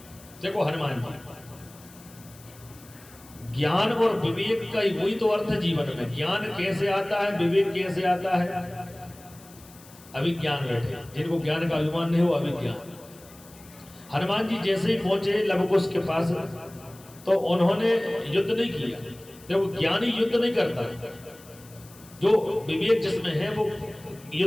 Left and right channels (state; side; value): noise; left; hiss, 22 dB below the sound